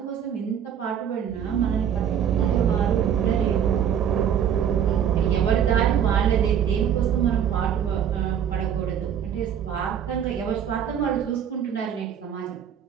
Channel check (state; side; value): quieter; left; 8.8 dB